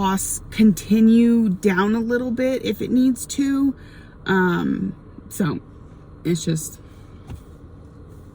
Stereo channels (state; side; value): identical; both; correlation 1.00